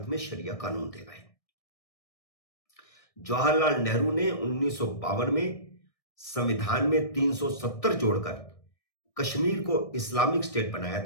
में शरिया कानून दे गए। जवाहरलाल नेहरू ने 1952 में संविधान में 370 जोड़कर कश्मीर को इस्लामिक स्टेट बनाया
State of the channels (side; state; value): right; late; 1.6 ms